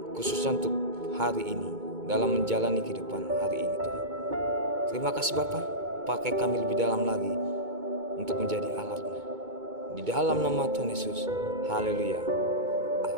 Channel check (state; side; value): late; left; 2.2 ms